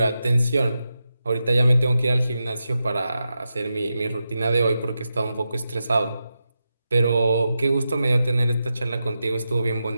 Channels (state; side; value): inverted; both; correlation -0.89